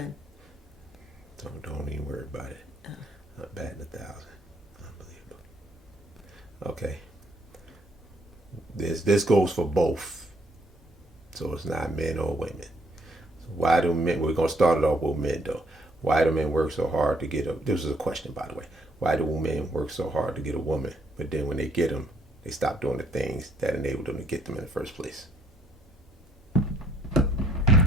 Don't even worry about it. I'm batting 1,000. Unbelievable. Okay. This goes for both. So it's not men or women. So why do men? We're gonna start it off with men though. Why do men work so hard to get a? This is a question, by the way. Why do men work so hard to get a woman, but then when they get them, they stop doing the things that enabled them to get them in the first place?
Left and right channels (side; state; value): both; normal; correlation 0.66